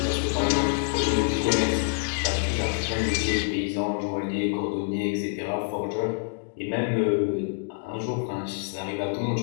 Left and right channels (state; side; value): silent; right; digital silence